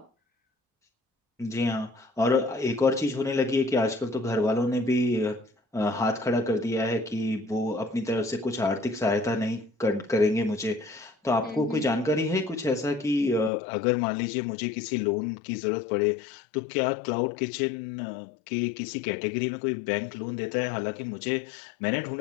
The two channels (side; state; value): right; drops out; at 13.5 s